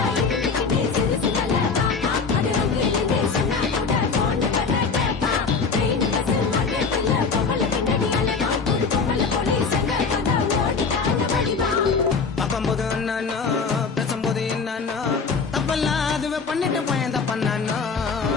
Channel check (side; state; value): right; quieter; 5.0 dB